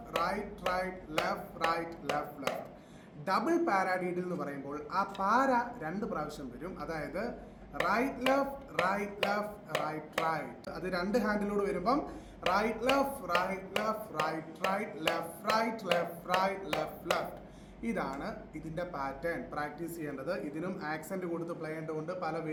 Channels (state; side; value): identical; both; correlation 1.00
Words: right right left right left left. Double paradiddle എന്ന് പറയുമ്പോൾ ആ പാര 2 പ്രാവശ്യം വരും. അതായത് right left right left right right. അത് 2 ഹാൻഡിലൂടെ വരുമ്പം right left right left right right left right left right left left. ഇതാണ് ഇതിൻ്റെ പാറ്റേൺ. പ്രാക്ടീസ് ചെയ്യേണ്ടത്. ഇതിനും ആക്സെൻറ്റ് കൊടുത്ത് പ്ലേ ചെയ്യേണ്ടതുണ്ട്. പല